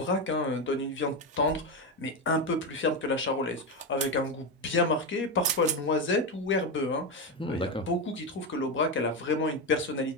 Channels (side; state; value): both; normal; correlation 0.12